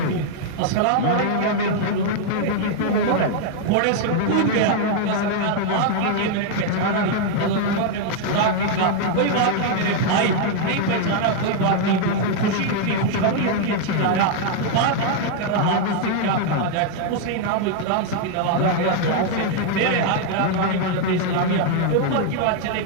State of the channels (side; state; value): both; different; correlation 0.00